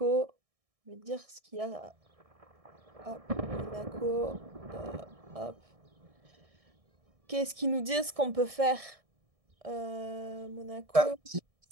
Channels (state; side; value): late; left; 1.6 ms